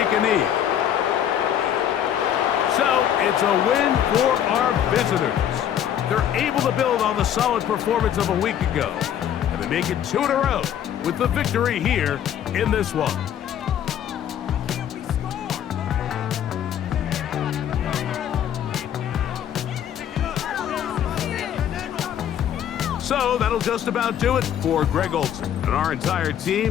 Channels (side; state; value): right; quieter; 9.9 dB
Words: a knee. So it's a win for our visitors. They're able to build on the solid performance of a week ago. And they make it 2 in a row with the victory here in this one. So that'll just about do it for Greg Olson and our entire